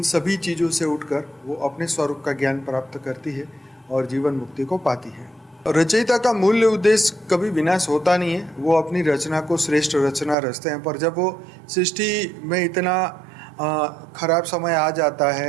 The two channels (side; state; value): left; drops out; at 10.4 s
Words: सभी चीज़ों से उठकर वो अपने स्वरूप का ज्ञान प्राप्त करती है और जीवन मुक्ति को पाती है। रचयिता का मूल्य उद्देश्य कभी विनाश होता नहीं है, वो अपनी रचना को श्रेष्ठ रचना रचते हैं। पर जब वो सृष्टि में इतना खराब समय आ जाता